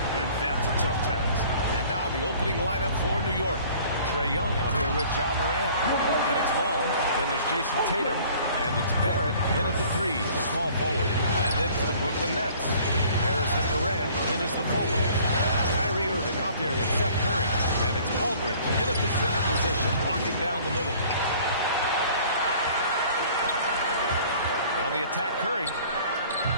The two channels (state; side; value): inverted; both; correlation -0.52